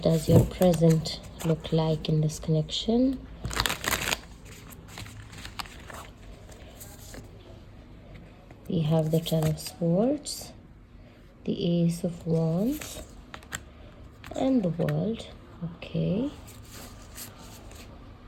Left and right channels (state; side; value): identical; both; correlation 1.00